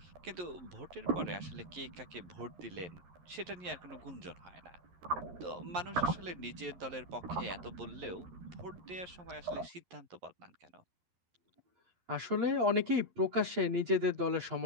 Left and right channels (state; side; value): late; left; 11 ms